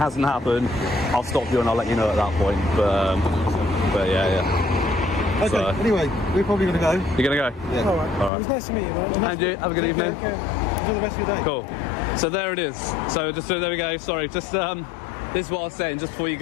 happened, I'll stop you and I'll let you know at that point. But Okay, so, anyway, we're probably going to go. You're going to go? Yeah. All right. It was nice to meet you, man. And you, have a good evening. Okay. Enjoy the rest of your day. Cool. So there it is. So there we go. Sorry, just this is what I was saying just before you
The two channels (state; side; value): drops out; right; at 8.3 s